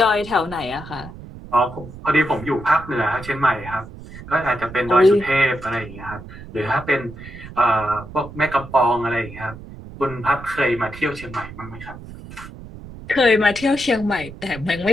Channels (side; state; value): right; noise; rumble, 14 dB below the sound